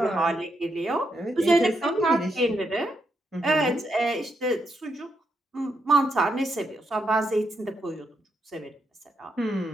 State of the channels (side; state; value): both; normal; correlation 0.80